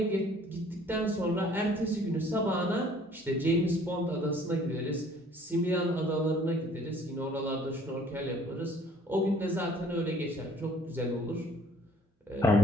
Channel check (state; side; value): normal; both; correlation 0.56